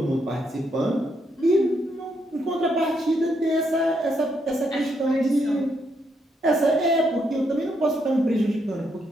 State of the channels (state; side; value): normal; both; correlation 0.77